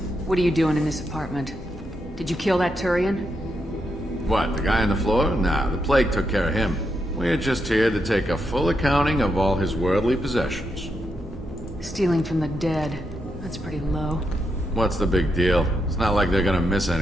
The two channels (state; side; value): normal; both; correlation 0.82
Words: What are you doing in this apartment? Did you kill that Turian? What, the guy on the floor? Nah, the plague took care of him. We're just here to take a full accounting of all his worldly possessions. Stealing from the dead. That's pretty low. What's the big deal? It's not like they're gonna miss